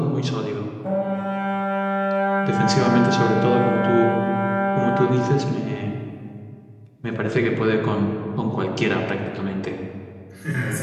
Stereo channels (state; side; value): identical; both; correlation 1.00